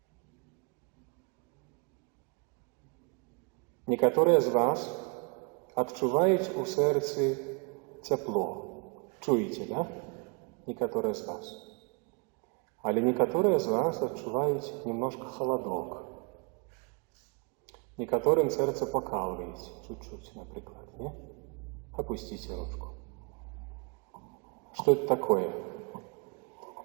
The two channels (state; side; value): quieter; left; 34.2 dB